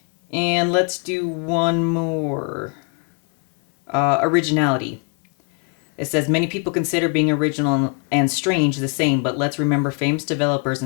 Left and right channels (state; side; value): quieter; right; 36.9 dB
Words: And let's do one more. Originality. It says many people consider being original and strange the same, but let's remember famous developers